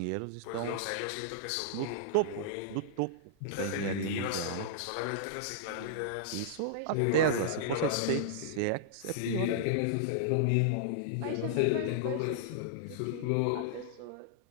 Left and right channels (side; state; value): both; different; correlation -0.02